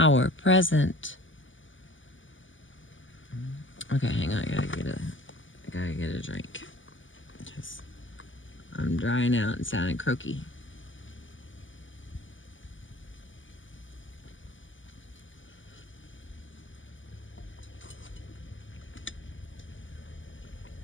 present. Okay, hang on, I gotta get a drink. Because I'm drying out and sounding croaky.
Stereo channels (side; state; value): right; late; 0.56 ms